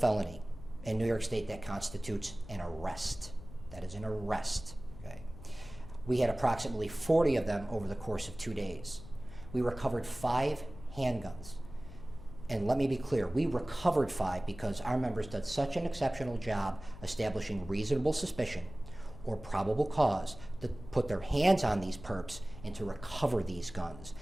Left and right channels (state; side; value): noise; left; hum, 15 dB below the sound